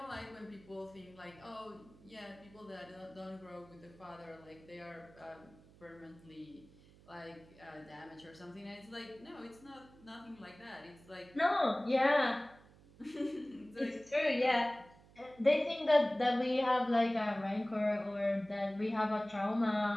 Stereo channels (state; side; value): noise; right; hum, 24 dB below the sound